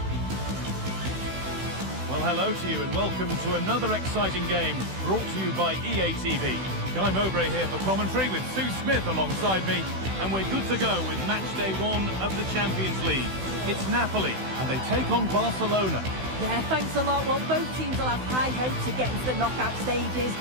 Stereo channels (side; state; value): left; late; 16 ms